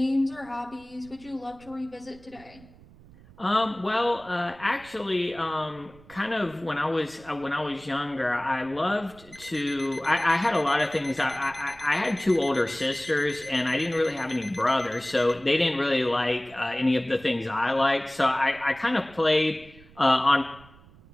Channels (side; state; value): right; noise; rumble, 24 dB below the sound